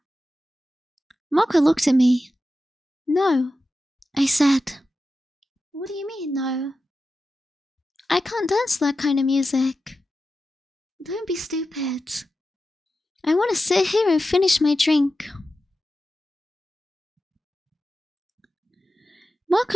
Marco looked at me. No, I said. What do you mean, no? I can't dance to that kind of music. Don't be stupid. I want to sit here and finish my drink.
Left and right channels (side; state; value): both; normal; correlation 0.92